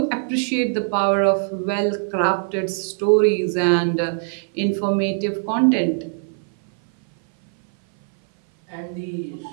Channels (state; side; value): silent; left; 59 dB below the other